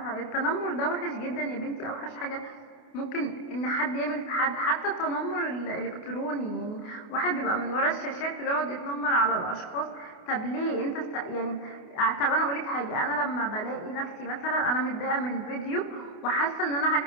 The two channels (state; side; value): late; right; 28 ms